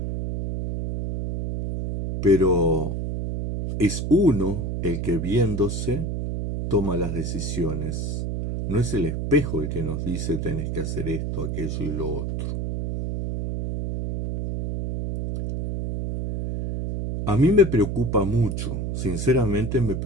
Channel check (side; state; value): right; noise; hum, 3 dB below the sound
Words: Pero es uno el que viéndose toma las decisiones. No es el espejo el que nos dice tenés que hacer esto, aquello y lo otro. A mí me preocupa mucho, sinceramente me